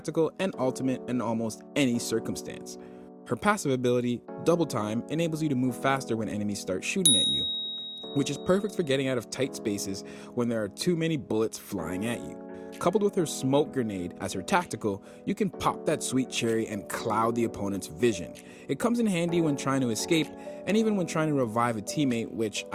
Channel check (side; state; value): both; identical; correlation 1.00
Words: and ultimate in almost any circumstance. Her passive ability, Double Time, enables you to move faster when enemies start shooting at you, which is perfect for getting out of tight spaces when there are too many bullets flying at you. Coupled with her smoke grenade as her tactical, you can pop that sweet cherry and cloud the opponent's vision. It comes in handy when trying to escape and even when trying to revive a teammate, which